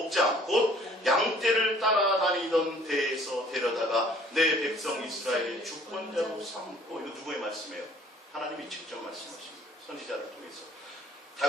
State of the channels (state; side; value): normal; both; correlation 0.55